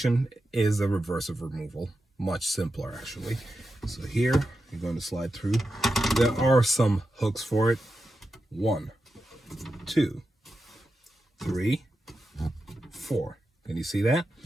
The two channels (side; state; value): both; normal; correlation 0.90